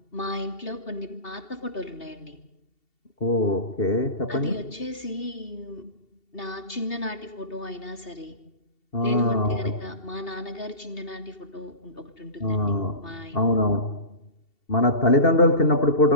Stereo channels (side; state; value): right; late; 2.7 ms